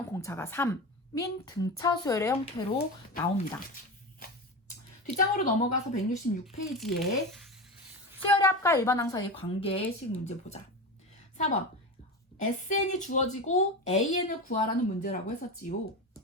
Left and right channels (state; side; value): normal; both; correlation 0.23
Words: 공차가 3인 등차 수열의 형태로 나옵니다. 뒷장으로 넘어가서 166페이지에 수열의 합과 일반항 사이의 관계식 문제 보자. 4번 SN이 주어지고 AN을 구하라는 문제라고 했었지요.